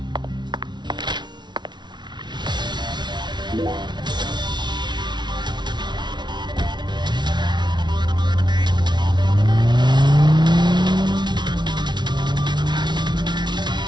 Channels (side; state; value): left; late; 0.21 ms